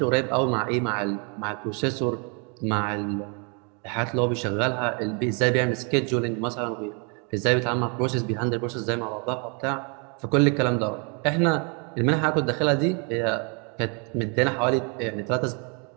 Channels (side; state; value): left; quieter; 35.6 dB